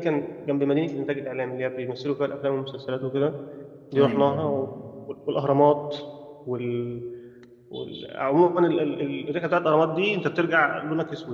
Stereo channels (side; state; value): both; identical; correlation 1.00